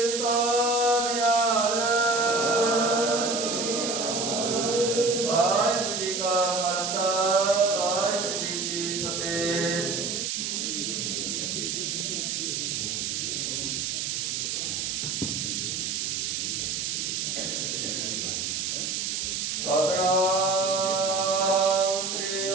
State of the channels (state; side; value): noise; right; hiss, 1 dB below the sound